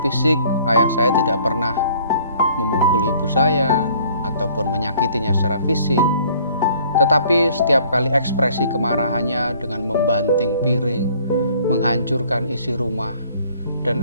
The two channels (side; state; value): both; inverted; correlation -0.57